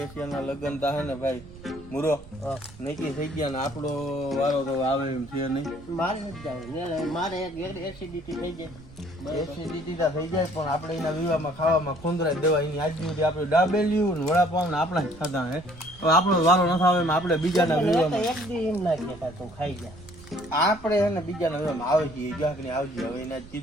લગ્ન તા હે ને ભાઈ મુરો નક્કી થઈ ગયા ને આપણો વારો તો આવે એમ છે નહીં. મારે નથી જાવ, મારે એસિડિટી થઈ જાય. એસિડિટી તા થઈ જાય પણ આપણે એના વિવાહમાં ખાવામાં ખોંદરાઈ દેવા. એની આજ સુધી આપણે ડાબેલ્યું ને વડાપાવ ને આપણા જ ખાધા હે. હવે આપણો વારો ન આવે એમ આપણે બીજાના વિવાહમાં એક દી એમ ના કહેતા તું ખાઈ જા. આપણે હે ને બીજાના વિવાહમાં આવે છે ગાંકની આવજે. હવે એને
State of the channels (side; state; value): right; noise; rumble, 19 dB below the sound